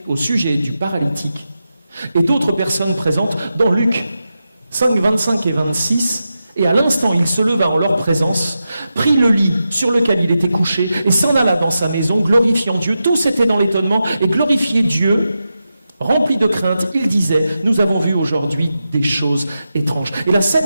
au sujet du paralytique et d'autres personnes présentes dans Luc 5, 25 et 26. Et à l'instant, il se leva en leur présence, prit le lit sur lequel il était couché et s'en alla dans sa maison, glorifiant Dieu. Tous étaient dans l'étonnement et glorifiaient Dieu. Rempli de crainte, il disait « Nous avons vu aujourd'hui des choses étranges. » Et la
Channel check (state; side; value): inverted; both; correlation -0.90